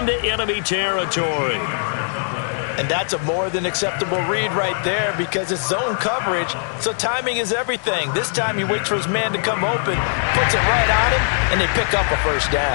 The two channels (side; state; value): right; silent; digital silence